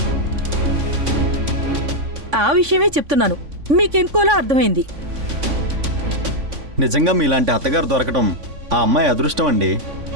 ఆ విషయమే చెప్తున్నాను, మీకెంకోలా అర్థమైంది. నిజంగా మీలాంటి అత్తగారు దొరకటం ఆ అమ్మాయి అదృష్టం అండి.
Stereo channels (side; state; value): left; late; 3.5 ms